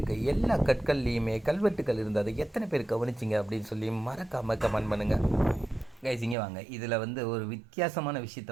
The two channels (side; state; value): left; drops out; at 6.4 s